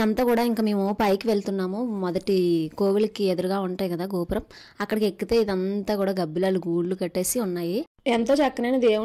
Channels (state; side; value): identical; both; correlation 1.00